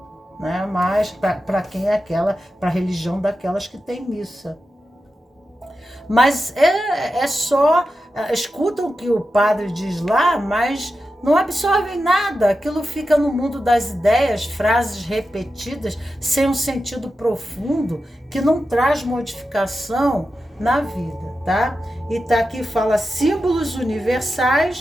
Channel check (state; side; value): normal; both; correlation 0.91